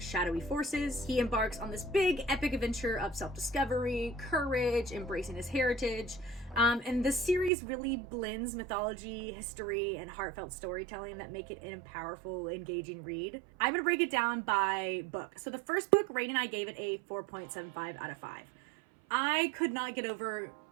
forces. He embarks on this big epic adventure of self-discovery, courage, embracing his heritage, and this series really blends mythology, history, and heartfelt storytelling that make it a powerful, engaging read. I'm gonna break it down by book. So the first book, Rain and I gave it a 4.75 out of 5. I could not get over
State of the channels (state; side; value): drops out; left; at 7.5 s